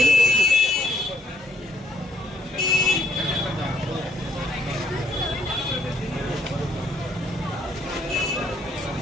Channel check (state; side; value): normal; both; correlation 0.68